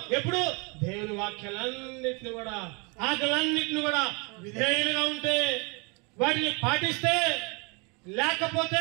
ఎప్పుడు దేవుని వాక్యాలన్నింటినీ కూడా, ఆకలన్నింటినీ కూడా విధేయులుగా ఉంటే, వాటిని పాటిస్తే,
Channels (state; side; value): quieter; left; 31.3 dB